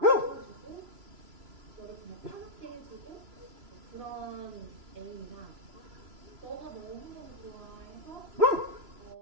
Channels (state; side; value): late; left; 3.0 ms